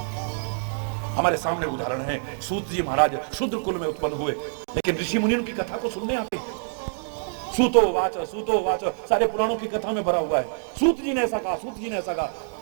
हमारे सामने उदाहरण है, सूत जी महाराज शूद्र कुल में उत्पन्न हुए, लेकिन ऋषि मुनियों की कथा को सुनने आते हैं। सूतो वाच सारे पुराणों की कथा में भरा हुआ है। सूत जी ने ऐसा कहा, सूत जी ने ऐसा कहा।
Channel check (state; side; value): silent; left; digital silence